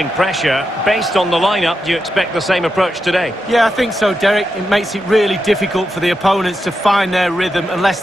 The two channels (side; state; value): both; normal; correlation 0.86